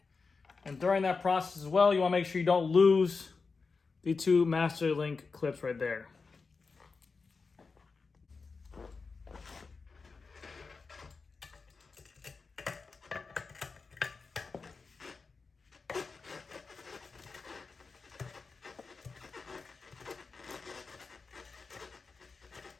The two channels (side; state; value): right; quieter; 4.5 dB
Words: And during that process as well, you want to make sure you don't lose the two master link clips right there.